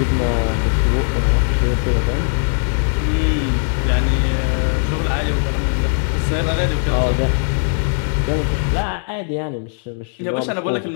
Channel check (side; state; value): right; silent; 61 dB below the other